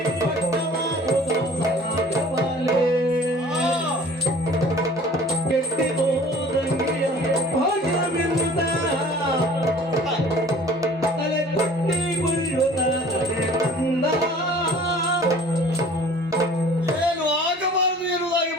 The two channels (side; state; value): both; normal; correlation 0.48